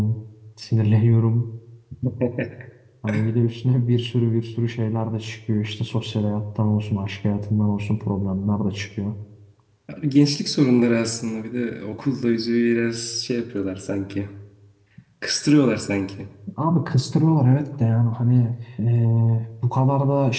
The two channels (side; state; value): both; identical; correlation 1.00